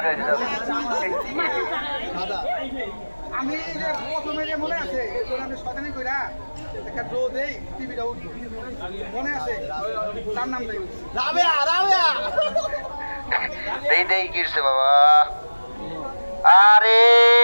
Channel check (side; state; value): both; inverted; correlation -1.00